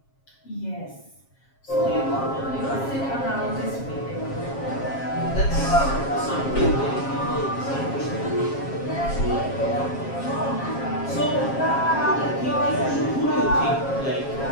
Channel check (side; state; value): right; late; 7.4 ms